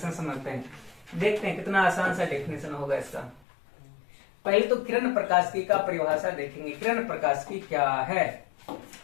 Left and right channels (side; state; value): right; drops out; at 3.4 s